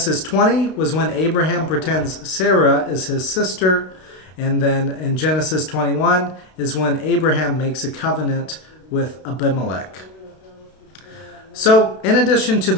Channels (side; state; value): right; late; 32 ms